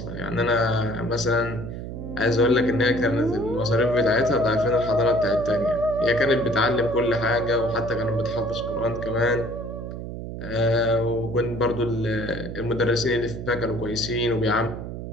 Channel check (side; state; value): right; noise; hum, 8 dB below the sound